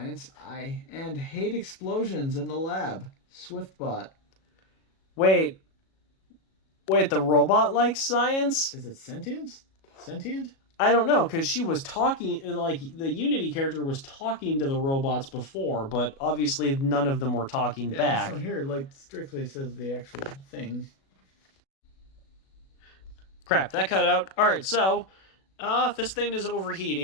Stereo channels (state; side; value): late; right; 37 ms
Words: And hate explosions in the lab. Swiftbot. Wait, the robot likes science? Is it sentient? Sentient? I don't know, because she was talking, like, the Unity character was talking to the robots before, but obviously none of them were talking back. This one here, like, strictly says the actual thing. Crap, that cut out. Alright, so, this thing is